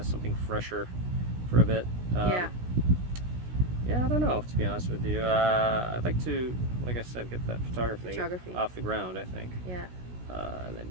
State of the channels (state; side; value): late; left; 16 ms